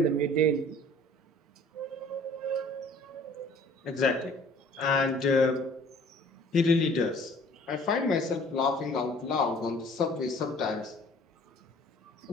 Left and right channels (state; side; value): normal; both; correlation 0.52